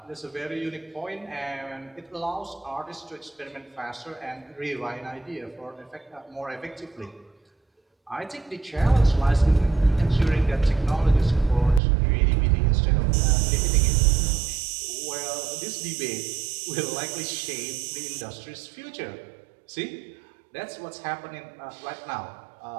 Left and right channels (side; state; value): left; drops out; at 11.8 s